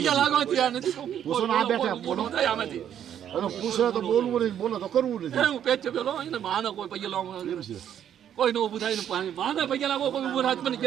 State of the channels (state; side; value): quieter; left; 9.8 dB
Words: નથી. લાગવા ત્યાં નથી પૂછો ને આ બેઠા બોલો થાય આમાંથી અને પૂછે તો બોલવું નહીં બોલો તો કરવું નથી હું પેચ પેલો એને માનો કોઈ પૈસા લાવવા એમ છે કોઈ નો ઊભું થાય ને પાણી માને પૈસા લાગો કોઈ ઊભું થાય મને